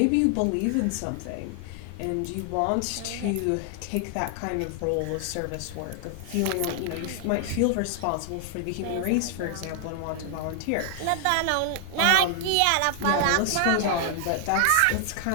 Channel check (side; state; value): both; different; correlation 0.00